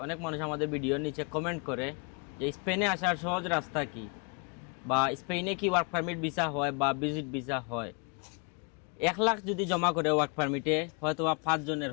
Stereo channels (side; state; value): right; quieter; 34.7 dB